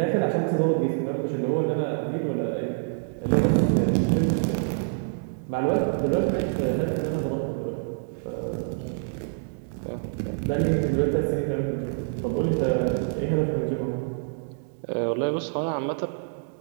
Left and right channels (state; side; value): silent; left; digital silence